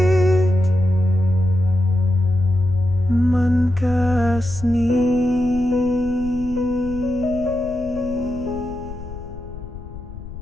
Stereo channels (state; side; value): noise; left; rumble, 13 dB below the sound